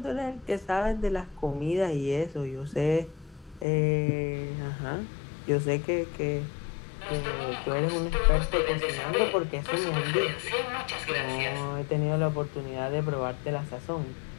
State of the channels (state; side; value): drops out; right; at 3.7 s